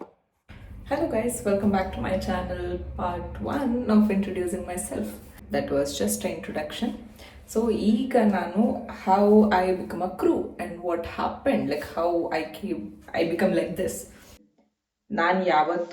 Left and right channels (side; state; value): both; identical; correlation 1.00